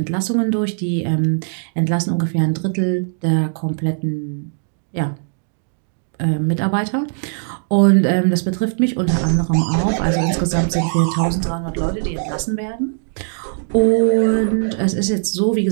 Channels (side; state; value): left; silent; digital silence